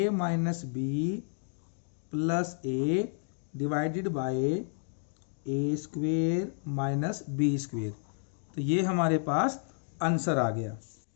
minus B plus A divided by A square minus B square. तो ये हमारे पास answer आ गया।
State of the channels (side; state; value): right; silent; 57 dB below the other